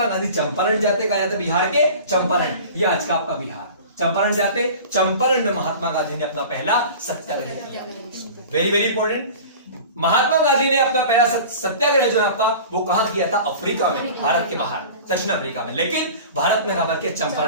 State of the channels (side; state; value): both; inverted; correlation -0.39